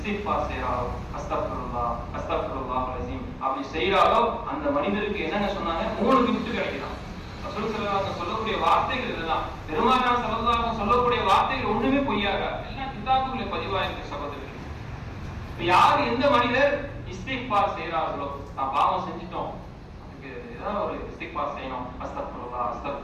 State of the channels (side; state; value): both; identical; correlation 1.00